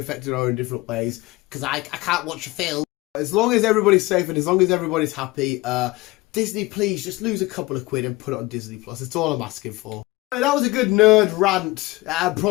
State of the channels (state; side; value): quieter; right; 21.1 dB